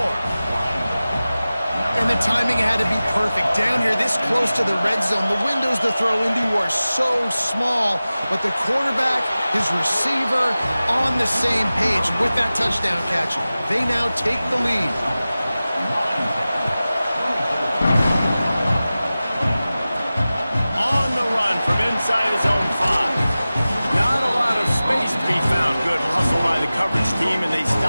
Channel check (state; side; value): inverted; both; correlation -0.96